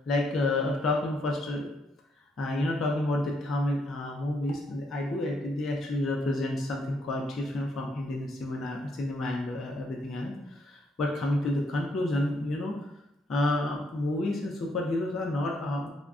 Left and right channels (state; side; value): normal; both; correlation 0.74